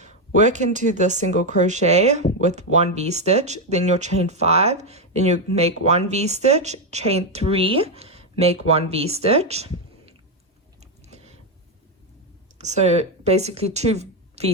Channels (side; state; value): both; normal; correlation 0.05